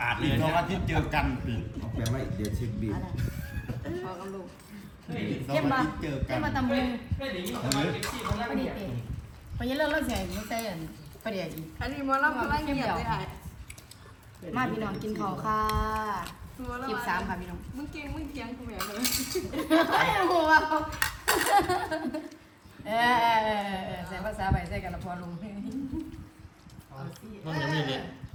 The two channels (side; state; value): both; identical; correlation 1.00